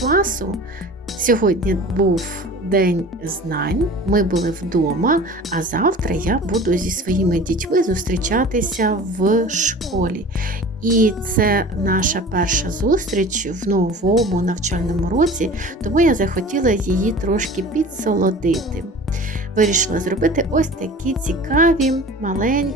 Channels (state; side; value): normal; both; correlation 0.40